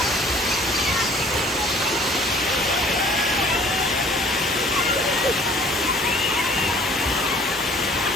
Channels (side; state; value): both; normal; correlation 0.54